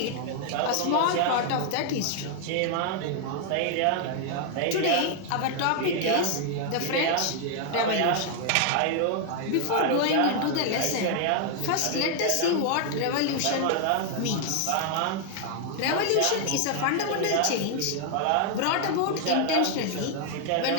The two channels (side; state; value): both; different; correlation 0.00